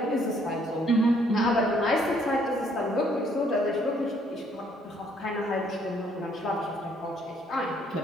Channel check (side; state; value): both; normal; correlation 0.65